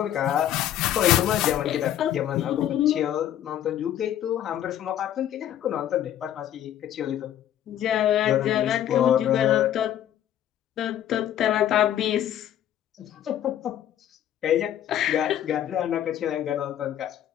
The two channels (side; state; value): right; quieter; 11.2 dB